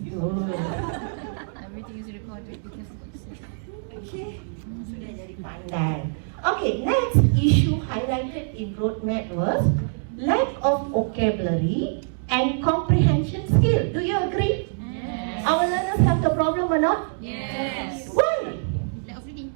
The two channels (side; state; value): left; silent; digital silence